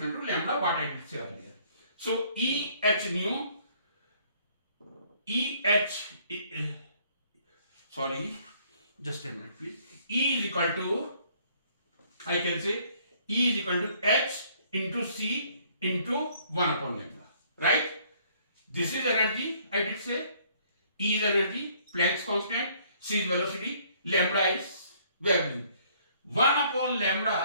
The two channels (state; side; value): inverted; both; correlation -0.62